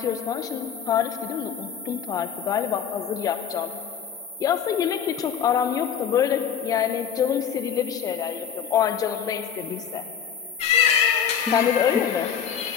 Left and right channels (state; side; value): quieter; right; 8.0 dB